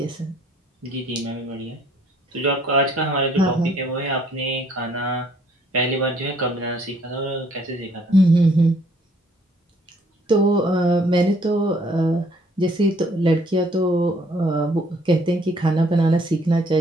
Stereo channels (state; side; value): normal; both; correlation 0.62